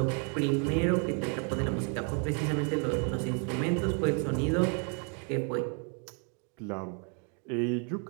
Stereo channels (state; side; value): quieter; left; 39.3 dB